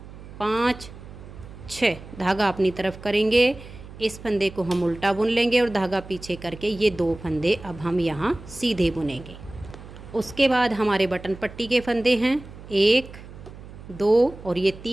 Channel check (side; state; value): right; noise; hum, 16 dB below the sound